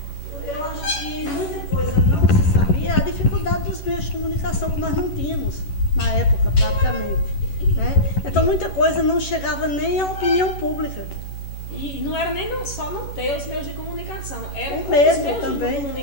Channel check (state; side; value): late; right; 11 ms